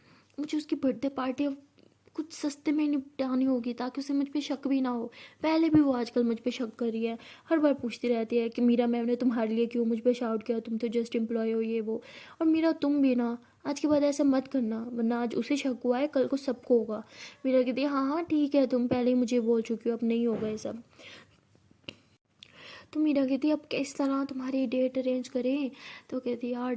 उसकी बर्थडे पार्टी कुछ सस्ते में निपटानी होगी ताकि उसे मुझ पे शक भी ना हो। पहले भी वो आजकल मुझ पे शक कर रही है, हर बार पूछती रहती है कि मीरा मैम ने तुम्हारे लिए क्यों मुझ पे शाउट किया, तुम तो जस्ट एम्प्लॉय हो ये वो। और मीरा तुम भी ना आज के बाद ऐसा मत करना, वरना आज उसे शक हुआ है कल को सबको होगा। मीरा कहती है हाँ हाँ ठीक है, तुम पहले ही मुझे बोल चुकी हो, अब नहीं होगा ये सब। तो मीरा कहती अब किस तरह तुम्हारी डेट अरेंज करें। तो कहती यार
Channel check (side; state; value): both; identical; correlation 1.00